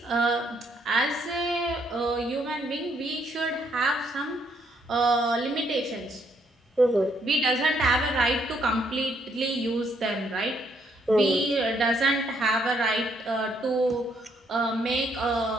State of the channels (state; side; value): normal; both; correlation 0.71